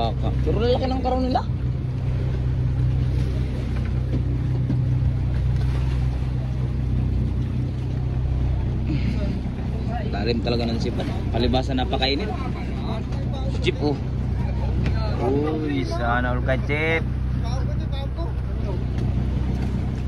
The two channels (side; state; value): both; identical; correlation 1.00